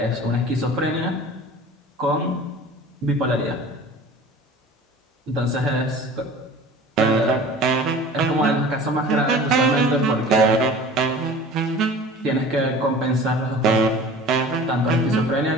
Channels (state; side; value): normal; both; correlation 0.42